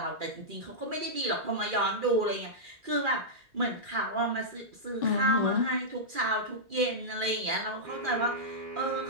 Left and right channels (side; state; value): left; late; 2.4 ms